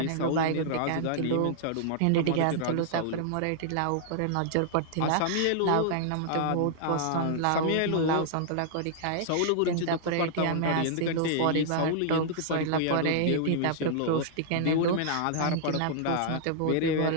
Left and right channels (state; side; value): different; both; correlation -0.01